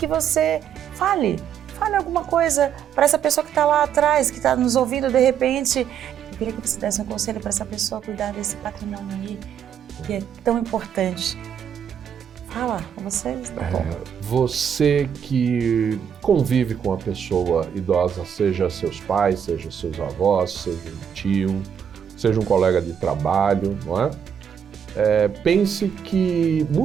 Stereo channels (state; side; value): quieter; left; 8.3 dB